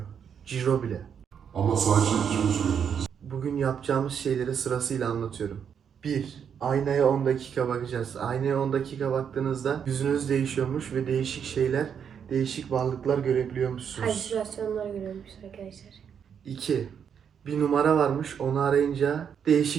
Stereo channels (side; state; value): left; quieter; 7.7 dB